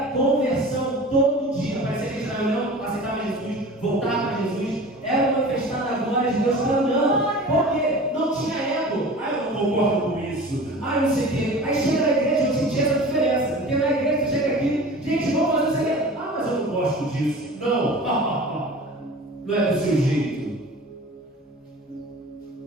conversão todo dia. Aparecia que Israel não aceitava Jesus, voltava para Jesus, era manifestada a glória de Deus clamando. Por quê? Não tinha ego. Ah, eu não concordo com isso. Ah, não sei o quê. Aí chega na igreja, eu senti essa diferença. Porque na igreja você chega aqui, gente, vamos fazer isso aqui. Ah, mas eu não gosto disso. Não. Não é do seu jeito.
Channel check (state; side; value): normal; both; correlation 0.38